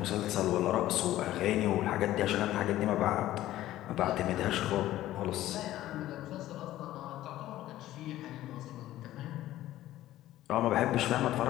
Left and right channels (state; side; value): quieter; right; 14.5 dB